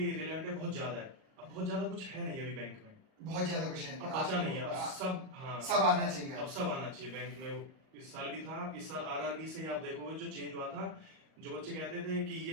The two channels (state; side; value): late; left; 38 ms